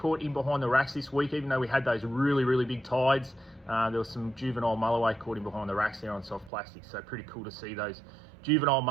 in behind the racks this week, even though we had those really, really big tides. There was some juvenile mulloway caught in behind the racks there on soft plastic, so pretty cool to see those juvenile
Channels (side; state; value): left; drops out; at 6.5 s